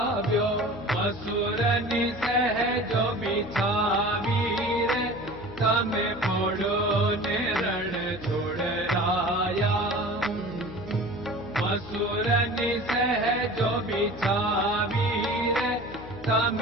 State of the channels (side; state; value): left; noise; hum, 15 dB below the sound